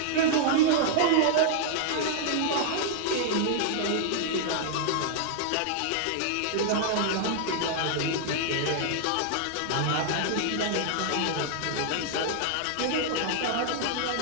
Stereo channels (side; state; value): both; different; correlation -0.01